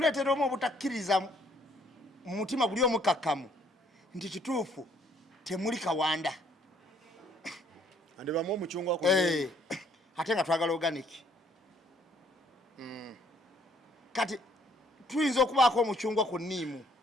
omu obutakkiriza mu mutima guli omukakkamu nti kituufu temuli Kawanda ande bamu omucungwa ate nga twagala organic kati tuyinza okubaako omucungwa ku nniimu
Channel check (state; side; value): normal; both; correlation 0.65